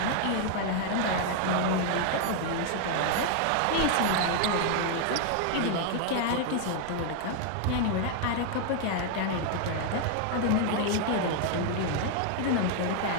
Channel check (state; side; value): different; both; correlation 0.00